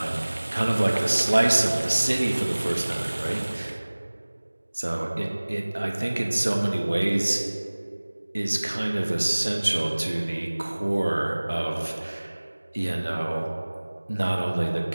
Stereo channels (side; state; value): both; inverted; correlation -1.00